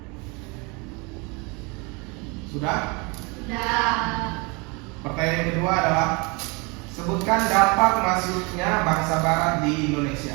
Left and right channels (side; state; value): left; quieter; 29.3 dB